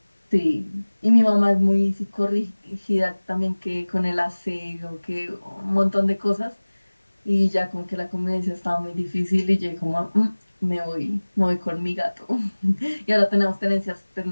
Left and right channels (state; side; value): inverted; both; correlation -1.00